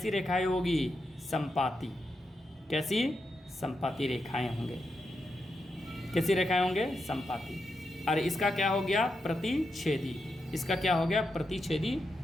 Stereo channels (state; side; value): normal; both; correlation 0.85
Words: रेखाएं होगी? संपाती। कैसी? संपाती रेखाएं होंगे। कैसी रेखाएं होंगे? संपाती। और इसका क्या हो गया? प्रतिच्छेदी। इसका क्या हो गया? प्रतिच्छेदी।